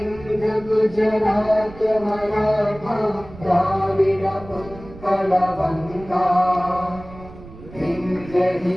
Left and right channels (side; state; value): right; noise; rumble, 17 dB below the sound